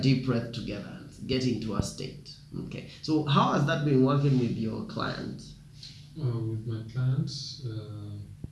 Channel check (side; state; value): both; identical; correlation 1.00